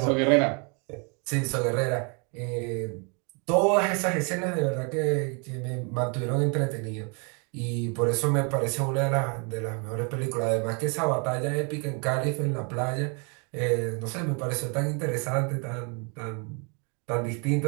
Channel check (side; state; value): left; quieter; 35.3 dB